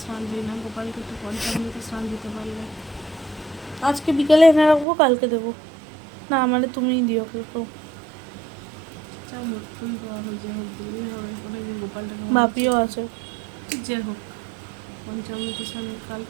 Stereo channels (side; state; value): left; drops out; at 4.9 s